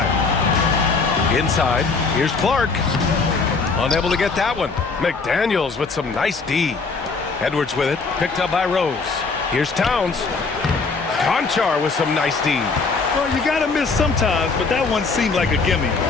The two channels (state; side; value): quieter; right; 4.4 dB